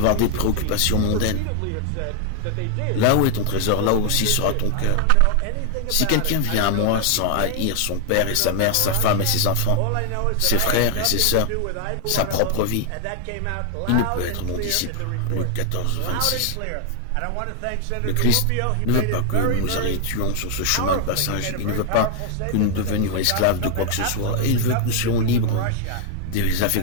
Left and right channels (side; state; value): both; different; correlation 0.00